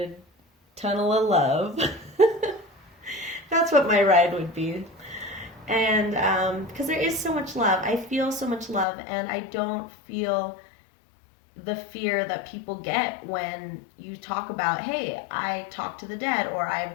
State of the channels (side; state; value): right; drops out; at 8.8 s